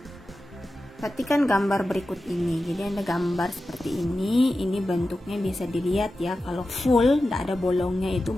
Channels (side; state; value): both; normal; correlation 0.93